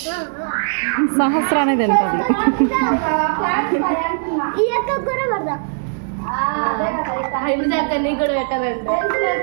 సహస్రానే తింటుంది. కూడా పెట్టాలంటే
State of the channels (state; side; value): silent; left; digital silence